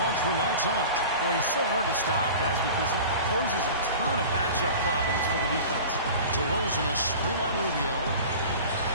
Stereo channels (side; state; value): both; inverted; correlation -0.38